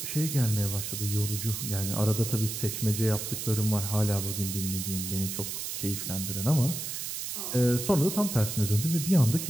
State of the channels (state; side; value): noise; right; hiss, 5 dB below the sound